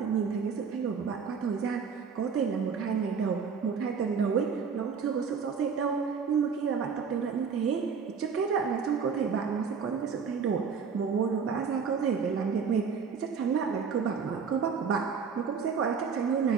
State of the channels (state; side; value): quieter; left; 6.0 dB